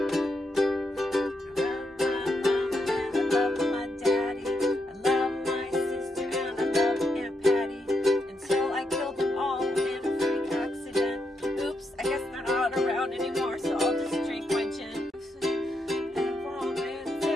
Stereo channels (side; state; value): both; normal; correlation 0.82